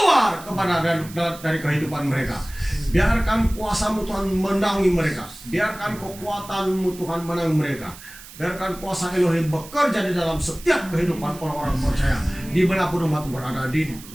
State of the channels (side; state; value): right; noise; hiss, 17 dB below the sound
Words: kepada dari kehidupan mereka. Biarkan kuasa-Mu Tuhan menangi mereka. Biarkan kekuatan-Mu Tuhan menangi mereka. Biarkan kuasa Elohim bekerja di dalam setiap kehidupan orang-orang percaya dimanapun umat berada, di